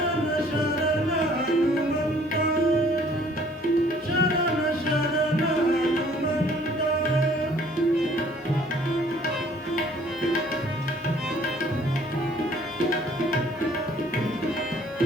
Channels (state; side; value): normal; both; correlation 0.57